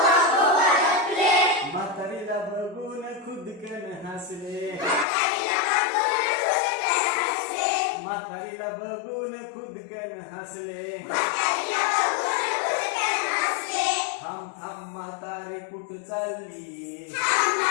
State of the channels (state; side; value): drops out; right; at 5.1 s